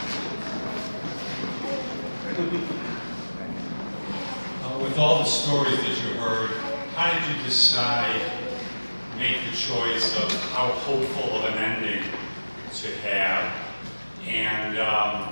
With all the stories that you heard, how did you decide, make the choice of how hopeful of an ending to have? And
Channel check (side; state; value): both; inverted; correlation -1.00